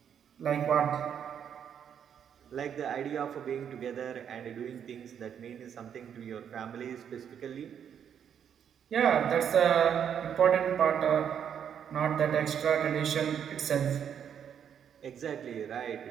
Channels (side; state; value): left; quieter; 8.4 dB